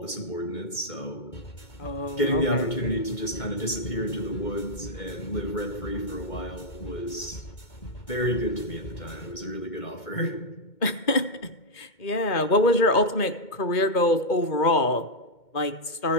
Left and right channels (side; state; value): right; late; 2.2 ms